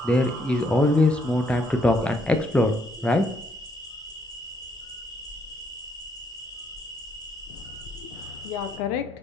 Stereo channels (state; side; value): normal; both; correlation 0.72